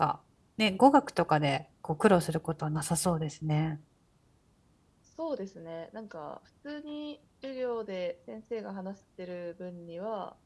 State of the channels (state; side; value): identical; both; correlation 1.00